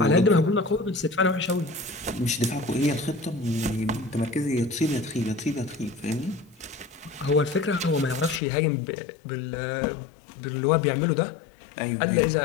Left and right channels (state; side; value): drops out; right; at 8.4 s